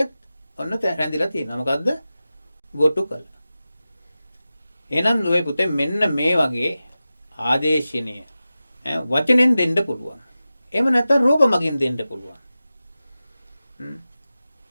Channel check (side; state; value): both; inverted; correlation -0.95